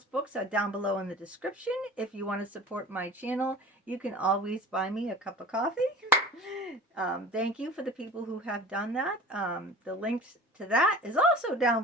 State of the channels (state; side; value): normal; both; correlation 0.40